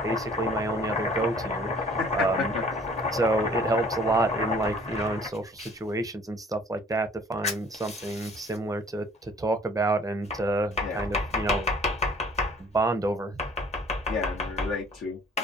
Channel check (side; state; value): both; normal; correlation 0.54